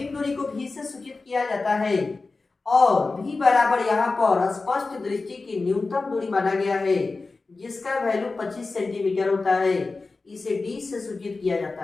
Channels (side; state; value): right; quieter; 3.8 dB